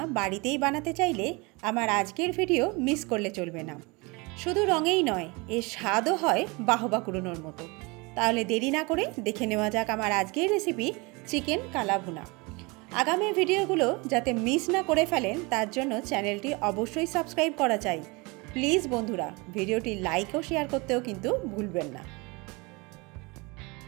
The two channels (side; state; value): left; quieter; 26.8 dB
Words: বাড়িতেই বানাতে চাইলে আমার আজকের ভিডিও মিস করলে চলবে না। শুধু রঙেই নয়, এর স্বাদও হয় বাহবা কুড়োনোর মতো। তাহলে দেরি না করে দেখে নেওয়া যাক আমার আজকের রেসিপি চিকেন কালাভুনা। আগামী ভিডিওগুলো যাতে মিস না করে ফেলেন তার জন্য চ্যানেলটি অবশ্যই সাবস্ক্রাইব করা চাই। প্লিজ বন্ধুরা, ভিডিওটি লাইক ও শেয়ার করতেও কিন্তু ভুলবেন না।